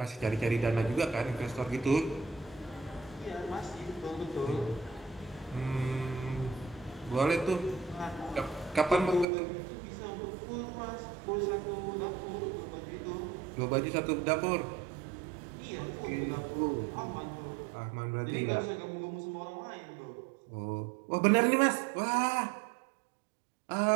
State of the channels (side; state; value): left; drops out; at 9.2 s